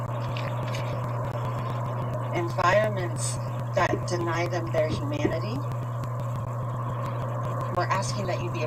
that deny them their humanity. We're asking that you be a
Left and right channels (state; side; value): identical; both; correlation 1.00